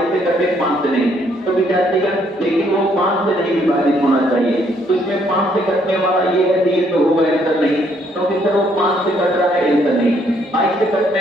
से कटे 5 से नहीं, तो विद्यार्थीगण लेकिन वो 5 से नहीं विभाजित होना चाहिए, तो इसमें 5 से कटने वाला ये है, ये तो होगा आंसर नहीं, क्योंकि सर वो 5 से कट रहा है, आंसर नहीं। 22 से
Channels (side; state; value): both; normal; correlation 0.68